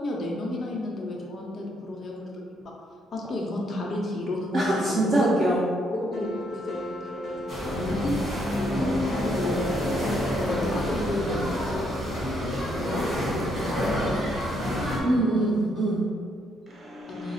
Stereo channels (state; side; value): normal; both; correlation 0.73